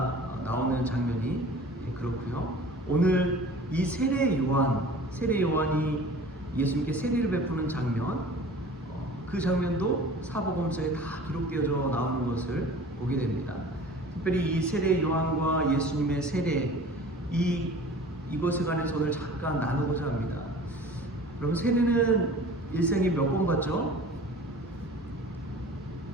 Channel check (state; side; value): normal; both; correlation 0.43